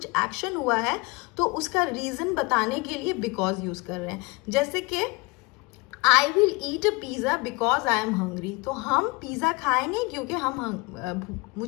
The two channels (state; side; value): quieter; right; 26.2 dB